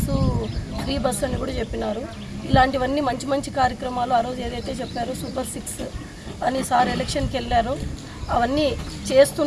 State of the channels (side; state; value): both; identical; correlation 1.00